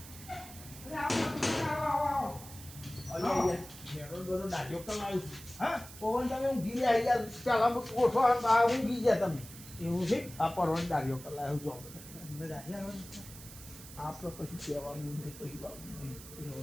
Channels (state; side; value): noise; right; hiss, 15 dB below the sound